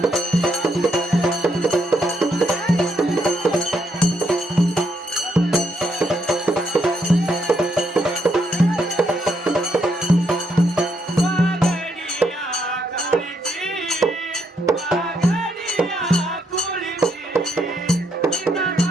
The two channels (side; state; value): both; normal; correlation 0.76